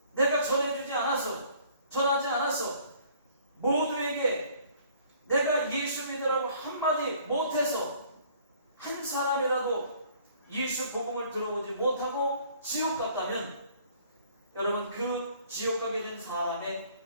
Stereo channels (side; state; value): both; inverted; correlation -0.56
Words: 내가 전해주지 않아서, 전하지 않아서 모두에게 내가 예수 믿으라고 한마디 못해서 한 사람이라도 예수 복음을 들어보지 못하고 지옥 갔다면 여러분 그 지옥 가게 된 사람의